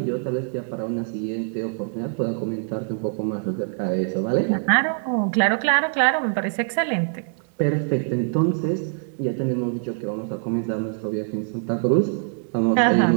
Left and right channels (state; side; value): silent; left; 63 dB below the other